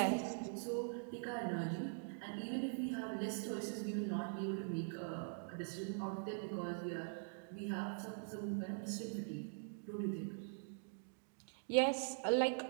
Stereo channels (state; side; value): silent; left; digital silence